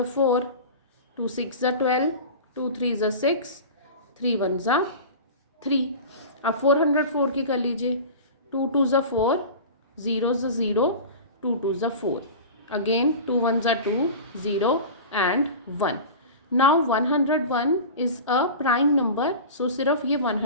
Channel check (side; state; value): both; inverted; correlation -0.32